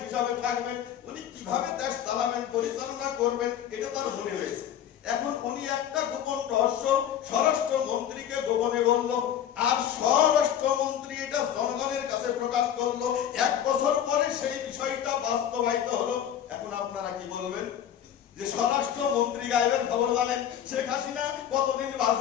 হিসাবে থাকবেন, উনি কিভাবে দেশ চালাবেন, পরিচালনা করবেন, এটা তার মনে রয়েছে। এখন উনি একটা গোপন রহস্য স্বরাষ্ট্রমন্ত্রীকে গোপনে বলল, আর স্বরাষ্ট্রমন্ত্রী এটা জনগণের কাছে প্রকাশ করলো। 1 বছর পরে সেই বিষয়টা বাস্তবায়িত হলো। এখন আপনারা কি বলবেন? যে স্বরাষ্ট্রমন্ত্রী গায়েবের খবর জানেন, শেখ হাসিনা কতদিন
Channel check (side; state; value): right; quieter; 9.9 dB